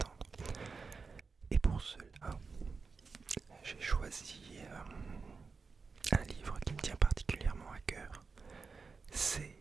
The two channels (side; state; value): left; quieter; 4.7 dB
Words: Et pour cela, j'ai choisi un livre qui me tient particulièrement à cœur. C'est